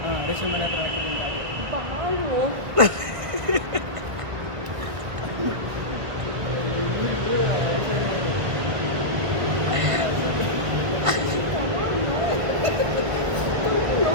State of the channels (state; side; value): late; left; 1.5 ms